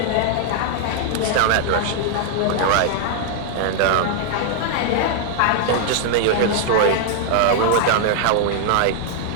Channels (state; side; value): different; both; correlation 0.00